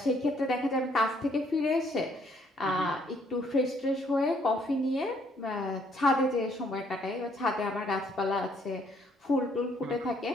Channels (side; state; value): both; normal; correlation 0.67